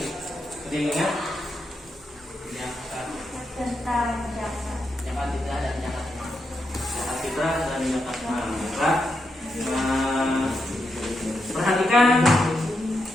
Ada yang ingat? Tentang zakat. Zakat fitrah dan zakat mal. Zakat fitrah dan zakat mal. Perhatikan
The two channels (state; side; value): normal; both; correlation 0.84